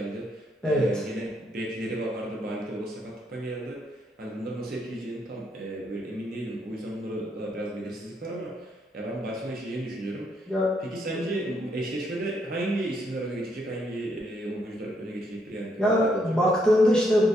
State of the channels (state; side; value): normal; both; correlation 0.75